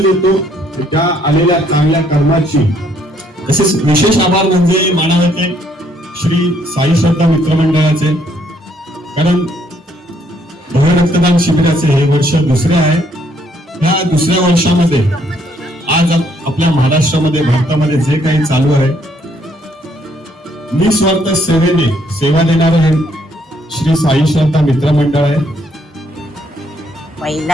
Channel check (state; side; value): normal; both; correlation 0.69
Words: येतो त्या आलेल्या चांगल्या कर्माची। तसेच विशेष आभार म्हणजे मानावते श्री साई श्रद्धा मित्रमंडळाचे, कारण भव्य रक्तदान शिबिराचे हे वर्ष दुसरे आहे। या दुसऱ्या वर्षामध्ये आज आपल्या महाराष्ट्रामध्ये भारतामध्ये जे काही चालू आहे, निस्वार्थ सेवेने सेवा देणारं हे श्री साई श्रद्धा मित्र मंडळ आहे.